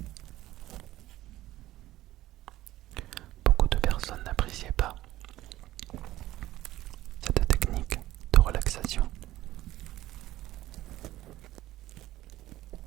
n'appréciaient pas cette technique de relaxation.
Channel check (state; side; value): quieter; left; 15.4 dB